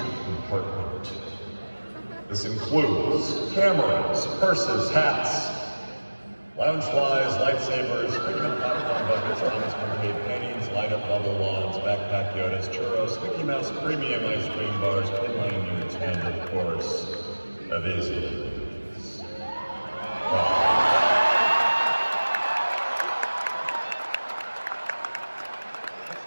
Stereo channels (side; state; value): both; inverted; correlation -1.00